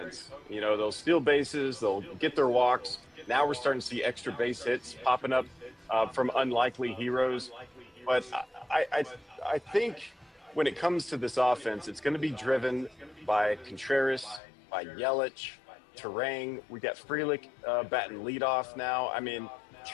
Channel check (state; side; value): drops out; right; at 14.4 s